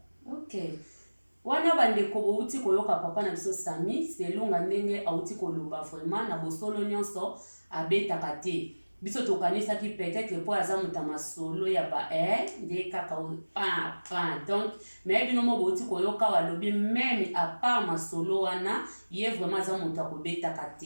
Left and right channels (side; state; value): both; inverted; correlation -1.00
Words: Ok, wana bandeko bouti koyoka papa na biso Sami selonga ndenge auti koloba vraiment na bosolo nyonso abetaka te. Biso tokanisaki peut-être po aza muta masolo ya ba nde kaka donc mais bino mo bouti koyoka walobi même à part masolo wana ye vraiment aza muta kobetaka